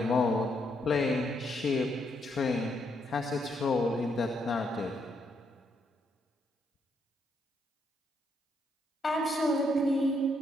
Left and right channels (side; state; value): both; normal; correlation 0.76